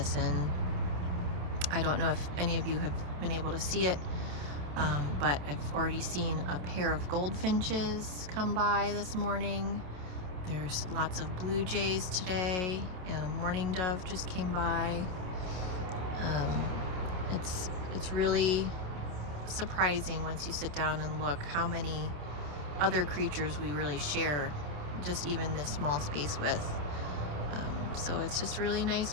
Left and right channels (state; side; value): late; left; 27 ms